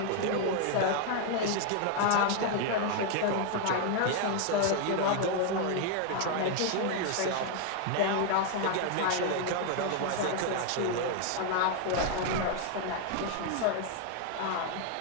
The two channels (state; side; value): different; both; correlation 0.00